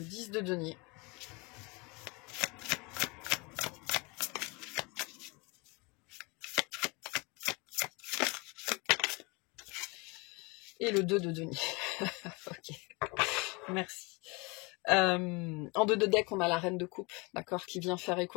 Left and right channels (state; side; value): quieter; right; 28.0 dB